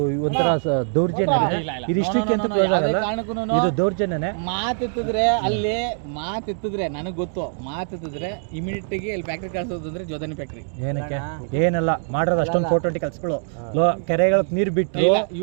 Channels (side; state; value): left; silent; 64 dB below the other